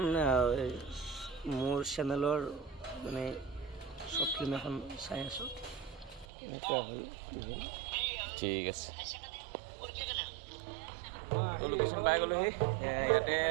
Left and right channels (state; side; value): drops out; left; at 6.2 s